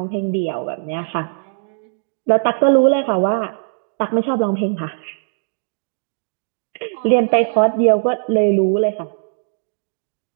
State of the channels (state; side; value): silent; left; digital silence